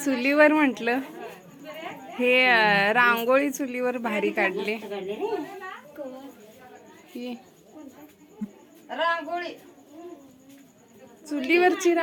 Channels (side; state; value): both; identical; correlation 1.00